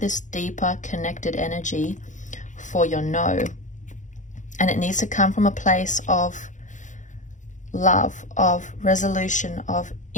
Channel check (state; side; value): late; right; 0.36 ms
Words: deeper connected energy for your no. And it needs to come from a place of love, of resolution, of